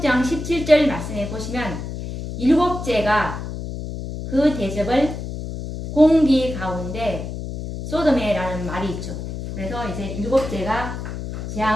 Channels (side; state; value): left; noise; hum, 7 dB below the sound